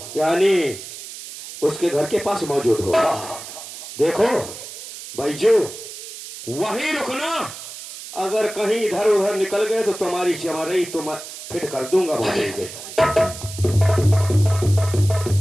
यानी उसके घर के पास मौजूद हो? हाँ। देखो बैजू, वहीं रुकना। अगर कहीं इधर उधर निकल गए तो तुम्हारी चमारई तुम फिट कर दूंगा। बोलेंगे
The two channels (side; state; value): right; noise; hiss, 12 dB below the sound